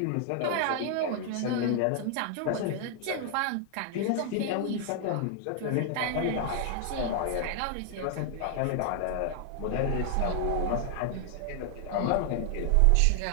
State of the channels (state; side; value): different; both; correlation 0.00